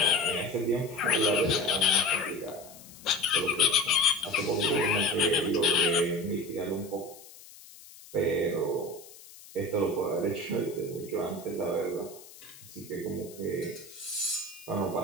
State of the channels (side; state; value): left; noise; hiss, 19 dB below the sound